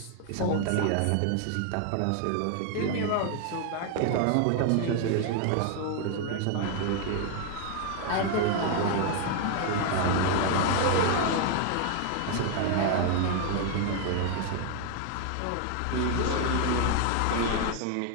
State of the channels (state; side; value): different; both; correlation 0.00